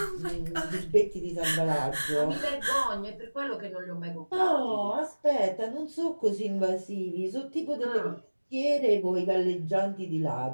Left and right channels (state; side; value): inverted; both; correlation -1.00